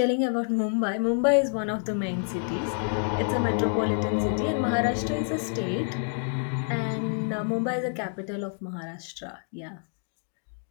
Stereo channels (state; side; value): silent; right; 57 dB below the other